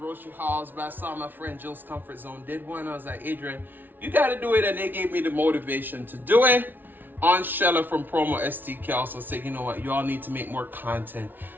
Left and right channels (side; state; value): left; late; 0.091 ms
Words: hauls, but I saw my friend Jill's Comfort Zone did one. I was like, Adrian, you got to do it, and they gave me the motivation to do it. On Shella from Promo STK also said, you know what, you all need to make more content.